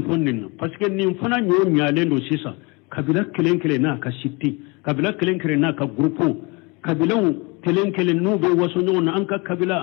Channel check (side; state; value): right; quieter; 28.1 dB